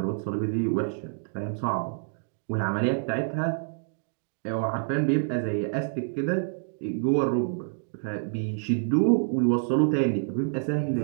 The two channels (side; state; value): left; silent; digital silence